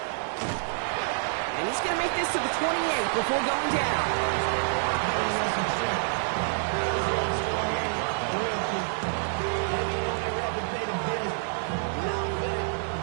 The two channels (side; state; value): left; silent; digital silence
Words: And he's going to make this to the 28 before going down.